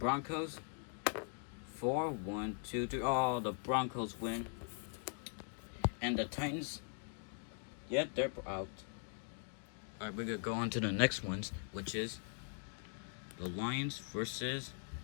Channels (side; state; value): right; silent; 50 dB below the other